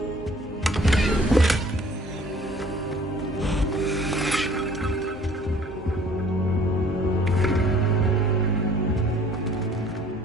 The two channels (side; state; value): both; normal; correlation 0.54